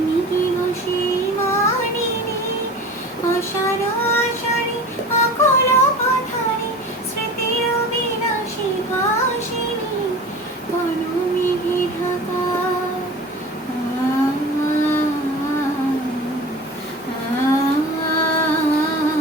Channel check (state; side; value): normal; both; correlation 0.37